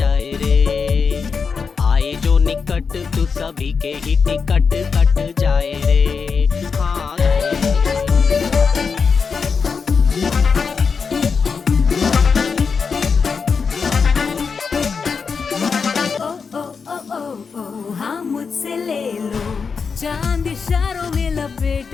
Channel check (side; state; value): right; quieter; 5.5 dB